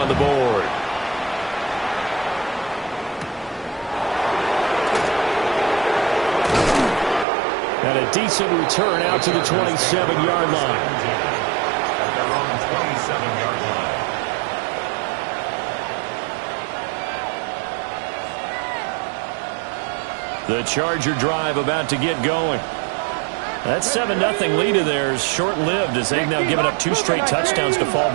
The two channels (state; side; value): drops out; left; at 7.2 s